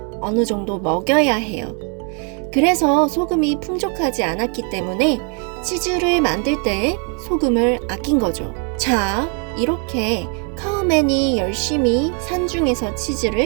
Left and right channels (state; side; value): quieter; left; 39.8 dB